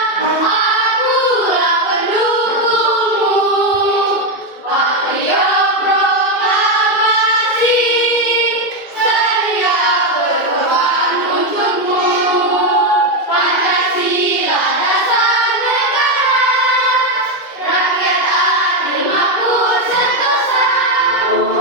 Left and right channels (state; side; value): late; right; 2.3 ms